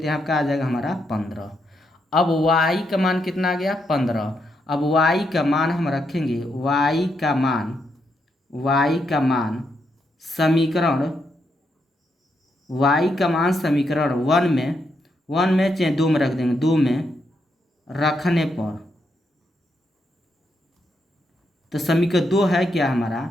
यहाँ क्या आ जाएगा हमारा 15। अब y का मान कितना आ गया, 15। अब y का मान हम रखेंगे, y का मान समीकरण समीकरण 1 में चाहे 2 में रख देंगे, 2 में रखने पर तो समीकरण 2 है क्या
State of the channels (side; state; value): both; normal; correlation 0.80